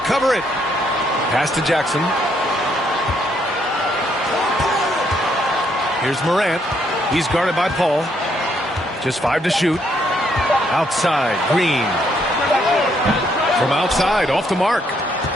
it. Pass to Jackson. Here's Morant. He's guarded by Paul. Just 5 to shoot. Outside, Green. From outside, off the mark.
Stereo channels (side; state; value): both; normal; correlation 0.72